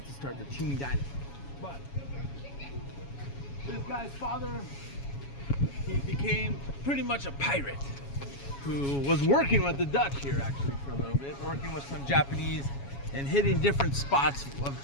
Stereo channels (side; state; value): right; late; 7.2 ms